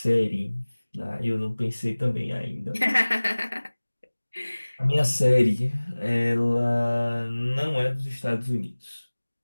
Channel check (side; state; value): both; inverted; correlation -1.00